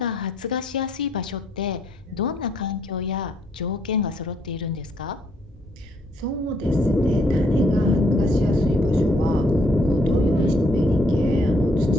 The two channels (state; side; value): normal; both; correlation 0.69